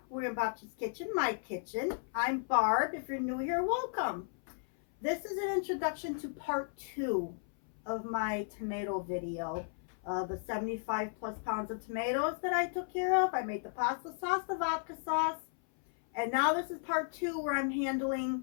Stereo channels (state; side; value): silent; right; 55 dB below the other